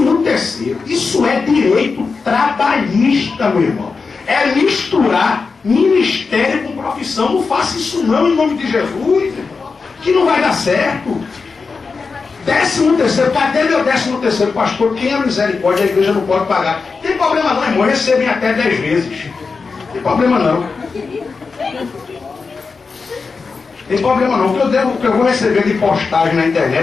Isso é direito trabalhista, meu irmão. É misturar ministério com profissão. Não faça isso não, em nome de Jesus, que não vai dar certo. 13º, cadê meu 13º, pastor? Quem é misericórdia, a igreja não pode pagar. Não tem problema não, irmão, recebem até 10 vezes. Não tem problema não. Tem problema não, o que eu vou receber de postagem na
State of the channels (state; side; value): quieter; right; 4.7 dB